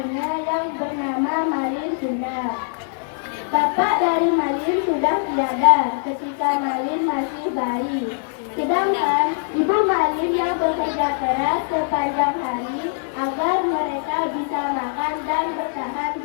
yang bernama Malin Kundang. Bapak dari Malin sudah tiada ketika Malin masih bayi. Sedangkan ibu Malin yang bekerja keras sepanjang hari agar mereka bisa makan dan bertahan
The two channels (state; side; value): silent; right; 64 dB below the other